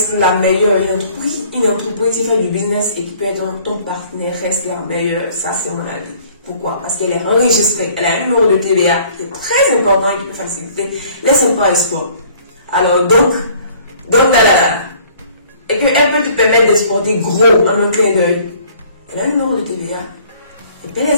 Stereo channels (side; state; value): both; inverted; correlation -0.56